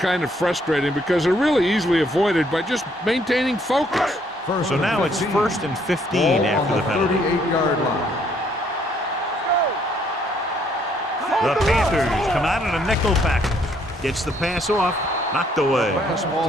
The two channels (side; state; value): both; normal; correlation 0.67